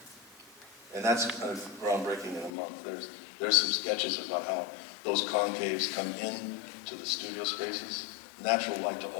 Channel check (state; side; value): drops out; right; at 2.5 s